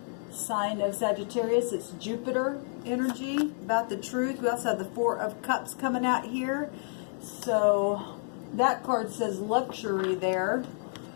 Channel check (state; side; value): silent; right; digital silence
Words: Sign of Sagittarius. It's Jupiter energy. About the truth. We also have the 4 of Cups coming out here. So that card says luxury there.